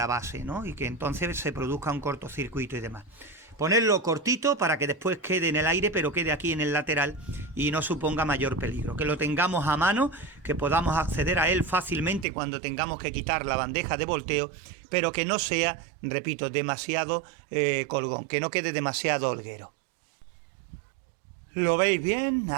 base, ¿no? Y que entonces se produzca un cortocircuito y demás. Ponerlo cortito para que después quede en el aire, pero quede aquí en el lateral y no suponga mayor peligro. Que lo tengamos a mano, que podamos acceder a él fácilmente cuando tengamos que quitar la bandeja de volteo, pero que no sea, repito, demasiado colgón, que no quede demasiado holguero. ¿Lo veis bien?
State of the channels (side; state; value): left; drops out; at 12.2 s